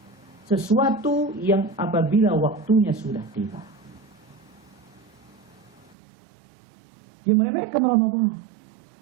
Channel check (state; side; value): drops out; left; at 5.9 s